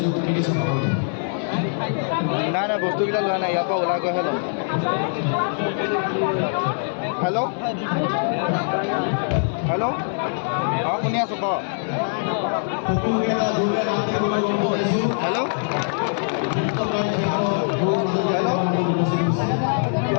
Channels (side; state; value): right; silent; 60 dB below the other